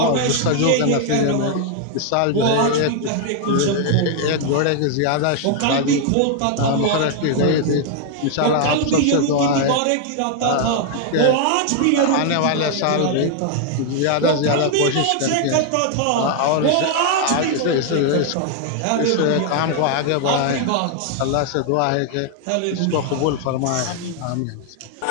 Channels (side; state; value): both; different; correlation 0.00